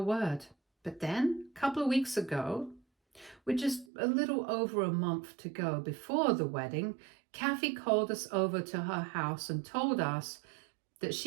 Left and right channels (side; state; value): left; drops out; at 3.9 s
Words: But then, a couple of weeks ago, with just a little over a month to go before the wedding, Kathy called us over to her house and told us that